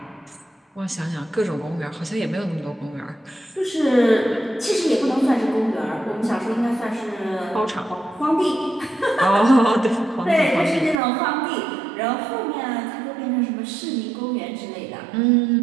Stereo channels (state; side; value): drops out; left; at 11.0 s